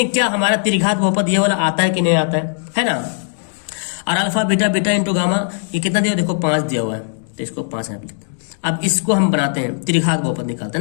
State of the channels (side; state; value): right; silent; digital silence